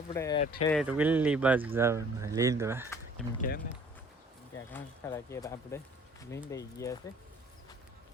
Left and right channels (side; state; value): both; normal; correlation 0.54